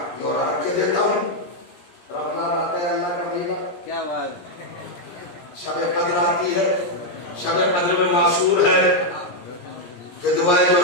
بیورا رکھ کے دیتا ہوں. رمضان آتا ہے اللہ کا مہینہ، کیا بات ہے، شب قدر آتی ہے. شب قدر میں معصور ہے کہ دعائیں جو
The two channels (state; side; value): late; right; 17 ms